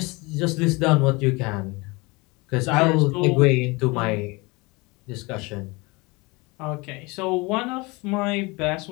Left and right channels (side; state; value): right; quieter; 25.5 dB